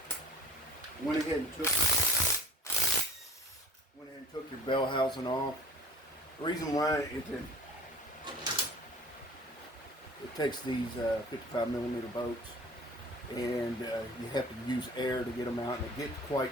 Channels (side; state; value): both; normal; correlation 0.45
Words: Went ahead and took your bell housing off. The reason why it takes these 55 millimeter bolts, and you have to use air to get them out, and it gets